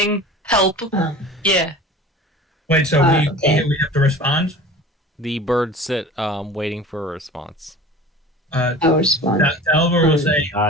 Help. Yeah. Wait, so we have to respond? The birds sit waiting for a response. I'll respond. Dalibor will say...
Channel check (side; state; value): both; normal; correlation 0.40